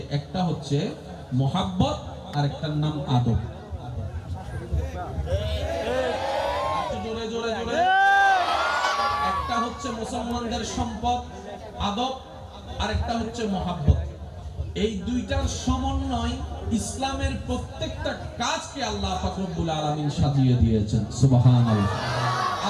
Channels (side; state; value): both; identical; correlation 1.00